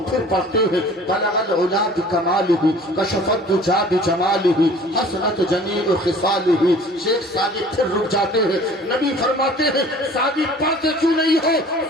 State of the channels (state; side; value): normal; both; correlation 0.48